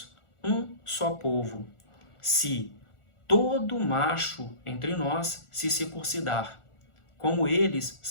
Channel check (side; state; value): right; late; 1.4 ms